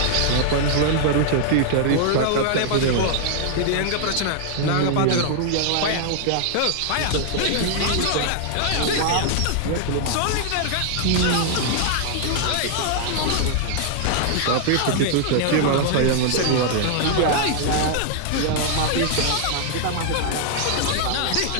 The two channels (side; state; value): both; different; correlation -0.01